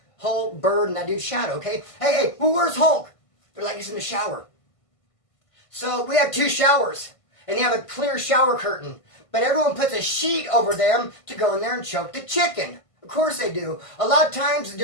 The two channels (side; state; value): right; late; 1.5 ms